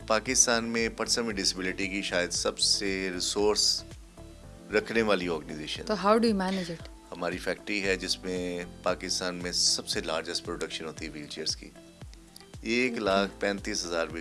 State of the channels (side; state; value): both; identical; correlation 1.00